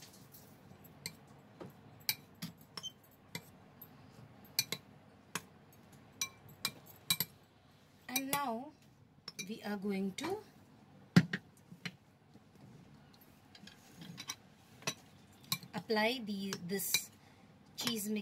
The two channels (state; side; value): identical; both; correlation 1.00